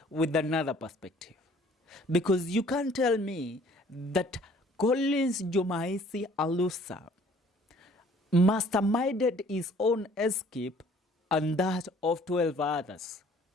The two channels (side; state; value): both; normal; correlation 0.56